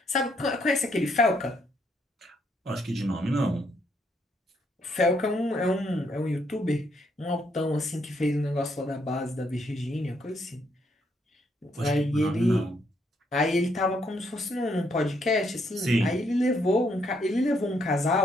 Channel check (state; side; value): normal; both; correlation 0.73